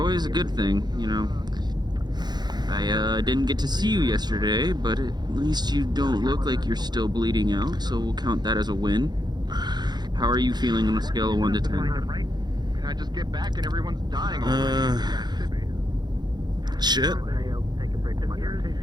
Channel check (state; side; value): late; left; 0.20 ms